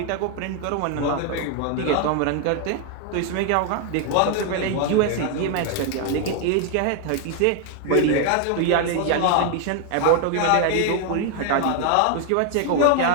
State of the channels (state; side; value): different; both; correlation 0.00